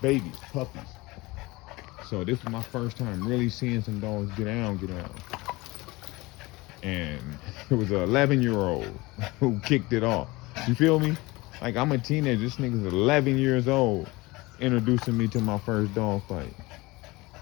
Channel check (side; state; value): right; quieter; 22.2 dB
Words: babies, puppies. So this was my first time really seeing some dogs get down. And it was an 11-year-old who kicked it off. You feel me? Like, I'm a teenager, this nigga's 11 years old, introducing me to my first dog fight.